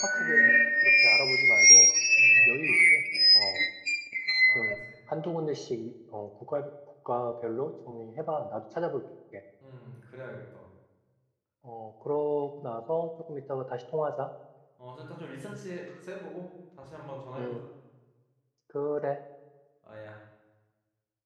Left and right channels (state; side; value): identical; both; correlation 1.00